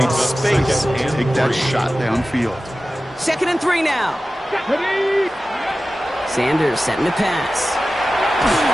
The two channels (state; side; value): normal; both; correlation 0.95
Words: space to take that shot downfield. 2nd and 3 now. Ready. Sanders setting to pass.